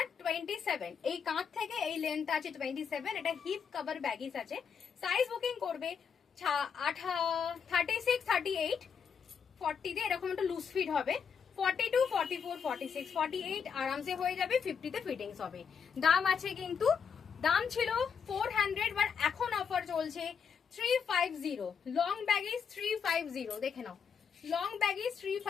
27, এই কাঁধ থেকে এই লেন্থ আছে 27। এটা হিপ কভার ব্যাগিস আছে। সাইজ বুকিং করবে 36, 38, 40 তে এরকম একটা লুজ ফিট হবে। 42, 44, 46, 48 আরামসে হয়ে যাবে। 50 তে ফিটিংস হবে। দাম আছে কিন্তু, দাম ছিল 400, বাট এখন অফার চলছে 350। লং ব্যাগিস 350, দেখে নাও লং ব্যাগিস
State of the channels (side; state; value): right; quieter; 6.8 dB